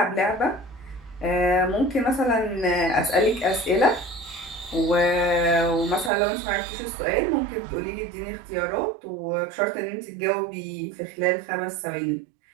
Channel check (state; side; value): drops out; left; at 6.1 s